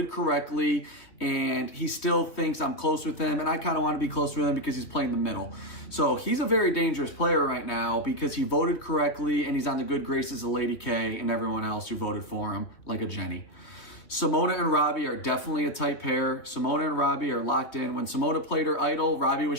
correctly, and he still thinks I'm close with him, and I kind of want to be close with him because he's playing the middle. So he's a very dangerous player right now because he voted correctly, and he's on the good graces of Lady K and everyone else who voted for him, like a Jeni. Simona and Robbie are definitely a tight pair. Simona and Robbie are locked in. When Simona played her idol, Robbie was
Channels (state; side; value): late; right; 3.0 ms